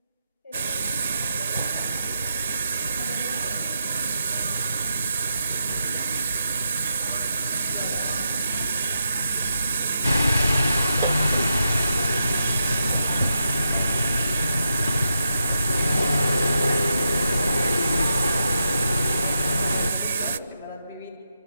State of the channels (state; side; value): inverted; both; correlation -0.84